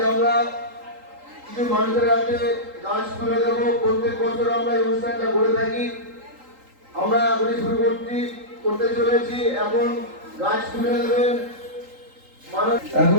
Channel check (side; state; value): left; late; 3.8 ms